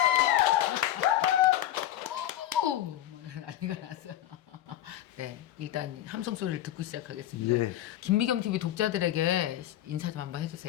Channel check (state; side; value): quieter; right; 13.0 dB